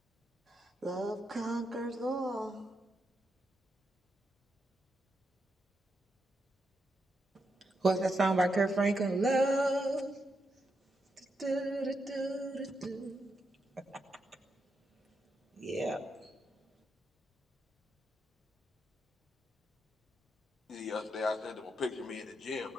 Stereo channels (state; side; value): normal; both; correlation 0.83